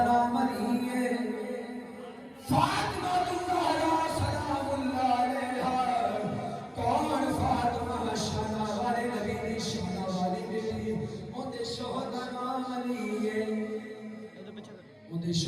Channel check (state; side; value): identical; both; correlation 1.00